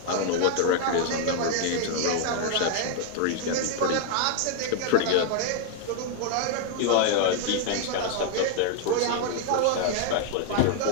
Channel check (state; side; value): different; both; correlation 0.00